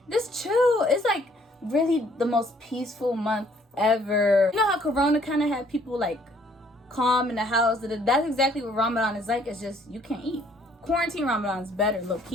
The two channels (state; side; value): normal; both; correlation 0.62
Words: just chill. It's like really the most peaceful month ever. You know how Corona kind of had people like calm in the house? That's exactly what Ramadan is like. It's just you can't eat. Quarantine Ramadan is better, low